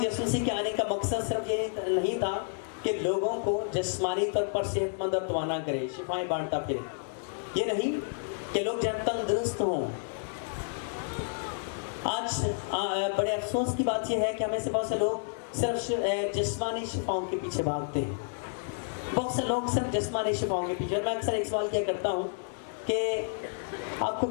یسوع مسیح کے آنے کا مقصد صرف یہ نہیں تھا کہ لوگوں کو جسمانی طور پر صحت مند اور توانا کرے، شفائیں بانٹتا پھرے. یہ نہیں کہ لوگ جب تندرست ہوں. آج بڑے افسوس کی بات یہ ہے کہ ہمیں سے بہت سے لوگ صرف جسمانی شفاؤں کے پیچھے بھاگتے ہیں. بہت سے لوگ صرف جسمانی شفاؤں کے پیچھے. اور میں اکثر ایک سوال کیا کرتا ہوں کہ آپ کو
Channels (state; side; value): silent; right; digital silence